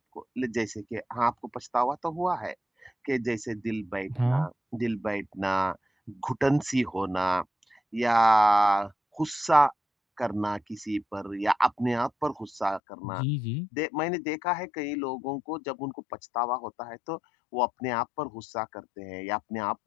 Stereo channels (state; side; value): drops out; right; at 12.8 s